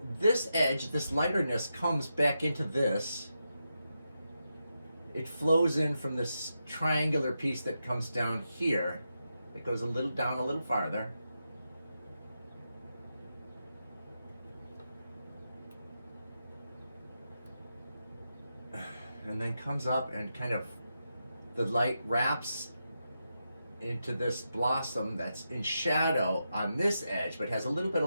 this edge, this lighterness comes back into this. It flows in from this triangular piece that comes down here. It goes a little down, a little farther. And then comes up and kind of, the light wraps into this blossom that's in shadow on this edge, but has a little bit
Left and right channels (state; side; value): inverted; both; correlation -0.87